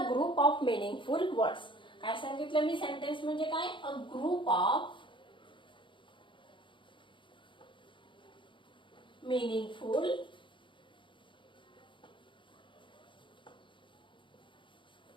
group of meaningful words. काय सांगितलं मी सेंटेन्स म्हणजे काय? अ ग्रुप ऑफ मीनिंगफुल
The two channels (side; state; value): right; late; 0.24 ms